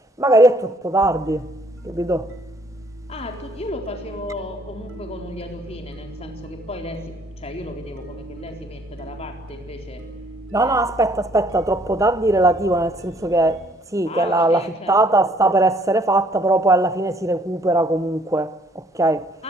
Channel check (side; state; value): both; normal; correlation 0.63